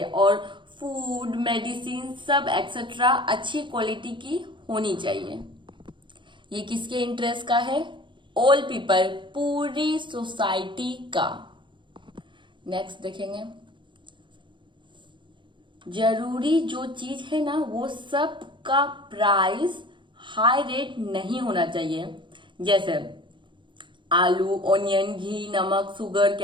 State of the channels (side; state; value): left; late; 0.23 ms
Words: और फूड, मेडिसिन सब एक्सेट्रा अच्छी क्वालिटी की होनी चाहिए। ये किसके इंटरेस्ट का है? ऑल पीपल, पूरी सोसाइटी का। नेक्स्ट देखेंगे, जरूरी जो चीज है ना वो सब का प्राइस हाई रेट नहीं होना चाहिए, जैसे आलू, ऑनियन, घी, नमक, शुगर,